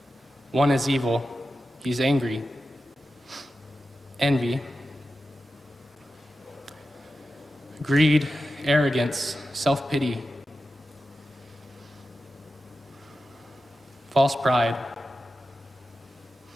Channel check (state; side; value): normal; both; correlation 0.92